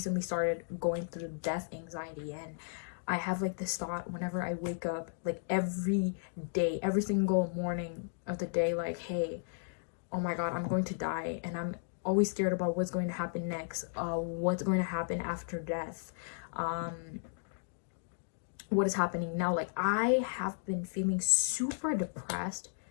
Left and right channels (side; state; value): right; silent; digital silence